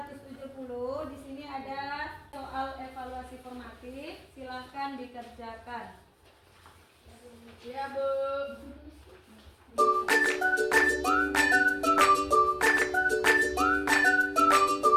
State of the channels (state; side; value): identical; both; correlation 1.00